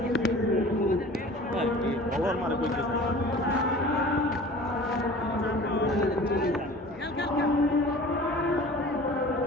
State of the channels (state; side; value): normal; both; correlation 0.43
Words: বলার মারে কইতেছে